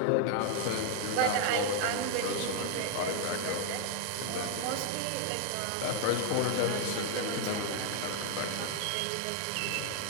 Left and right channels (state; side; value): different; both; correlation 0.00